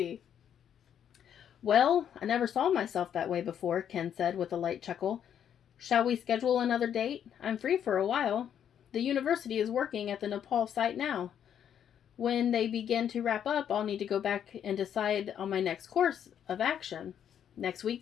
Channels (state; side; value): quieter; right; 9.2 dB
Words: Well, I never saw myself that way before, Ken said with a light chuckle. Shall we schedule another date? I'm free for a while. The university is working at the Nepal site now. When they begin to wrap up, I'll need to go back and decide on my next course of action. Next